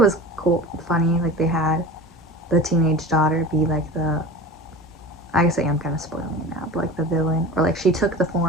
was cool, funny. Like they had the teenage daughter be like I guess I am kind of spoiling it now, but like the villain, or like she took the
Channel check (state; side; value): normal; both; correlation 0.34